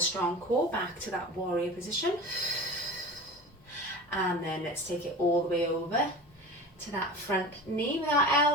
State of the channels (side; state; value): both; normal; correlation 0.34